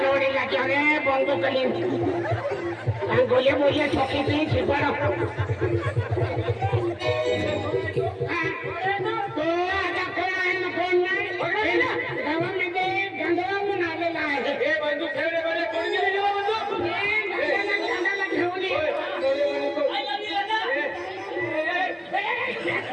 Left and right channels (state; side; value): identical; both; correlation 1.00